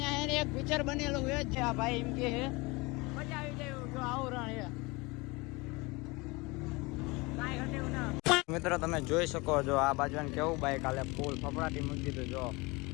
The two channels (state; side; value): quieter; right; 25.0 dB